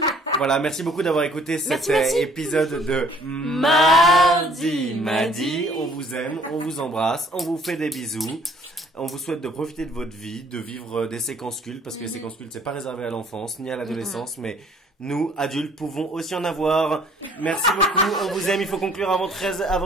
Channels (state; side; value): normal; both; correlation 0.58